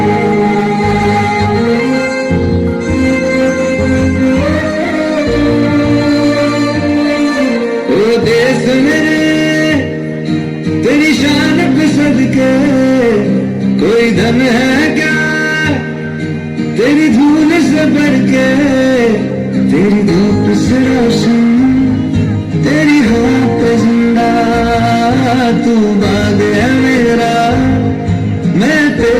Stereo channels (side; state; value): both; identical; correlation 1.00